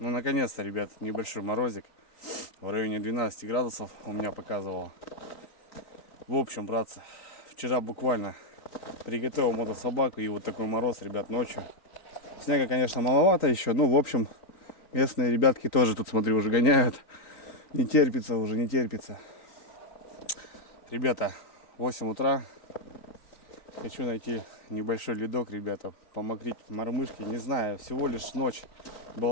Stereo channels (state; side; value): late; right; 3.9 ms